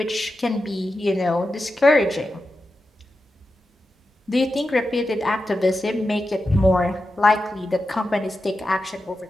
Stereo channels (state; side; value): normal; both; correlation 0.91